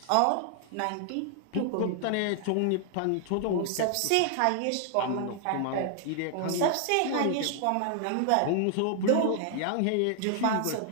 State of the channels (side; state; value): both; different; correlation 0.00